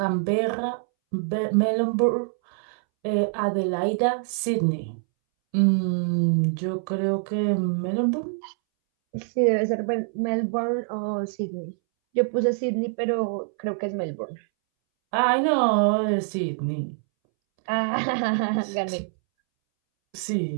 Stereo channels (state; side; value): silent; left; 62 dB below the other